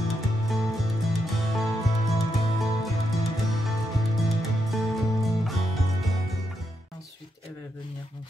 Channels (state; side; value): normal; both; correlation 0.82